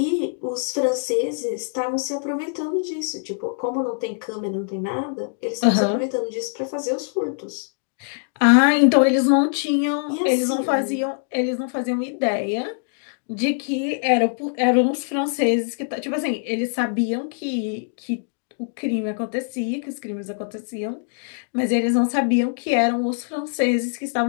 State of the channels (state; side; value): silent; right; digital silence